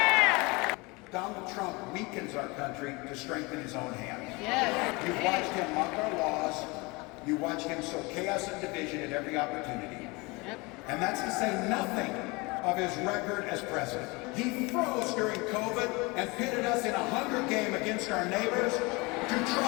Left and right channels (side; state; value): right; quieter; 25.8 dB